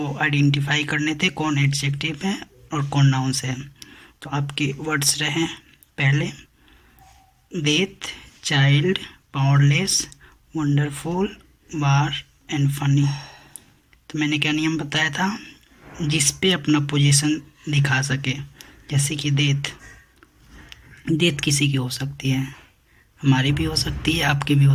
आइडेंटिफाई करने थे कौन एडजेक्टिव है और कौन नाउन्स है। तो आपके वर्ड्स रहे पहले death, child, powerless, wonderful, war and funny. तो मैंने क्या नियम बताया था, जिस पे अपना पोजीशन दिखा सके। जैसे कि डेथ, डेथ किसी की हो सकती है, हमारी भी हो सकती है, आपकी भी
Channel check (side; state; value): both; identical; correlation 1.00